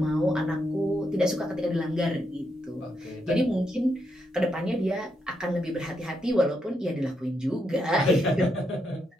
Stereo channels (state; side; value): normal; both; correlation 0.80